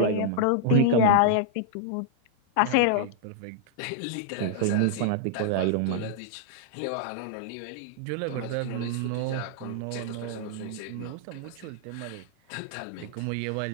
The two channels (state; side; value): different; both; correlation -0.01